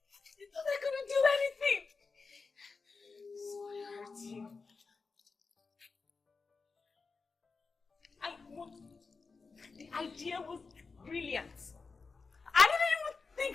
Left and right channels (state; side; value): quieter; right; 4.5 dB